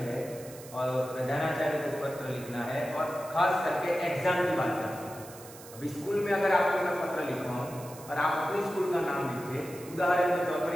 और प्रधानाचार्य को पत्र लिखना है, और खास करके एग्जाम की बात करते हैं। अभी स्कूल में अगर आपको मैं पत्र लिखवाऊं और आप अपने स्कूल का नाम लिखे, उदाहरण के तौर पर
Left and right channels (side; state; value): right; noise; hiss, 17 dB below the sound